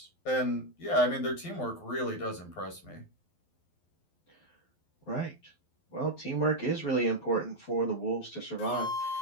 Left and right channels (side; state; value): right; late; 12 ms